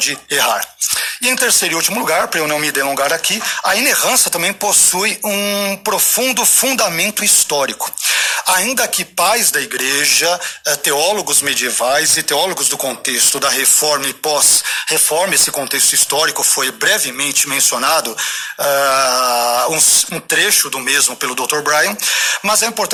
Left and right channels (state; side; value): identical; both; correlation 1.00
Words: errar. E em terceiro e último lugar, para eu não me delongar aqui, a inerrância também possui um profundo fundamento histórico. Ainda que pais da igreja, teólogos medievais e teólogos do contexto da reforma e pós-reforma, esse contexto histórico foi brevemente mencionado, um trecho do mesmo pelo Dr. Brian, mas é